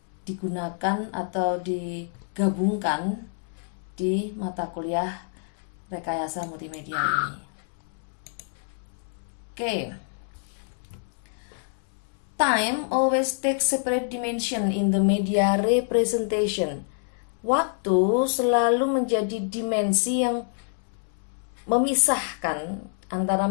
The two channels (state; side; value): silent; right; 60 dB below the other